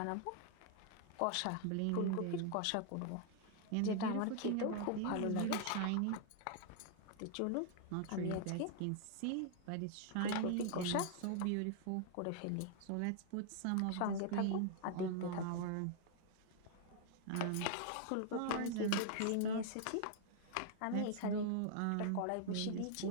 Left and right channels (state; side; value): different; both; correlation 0.00